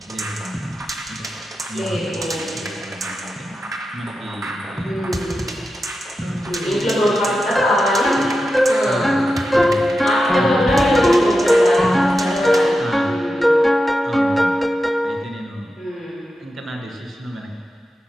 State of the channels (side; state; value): both; normal; correlation 0.90